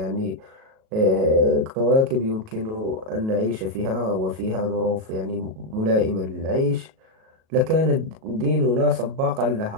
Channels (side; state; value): left; late; 37 ms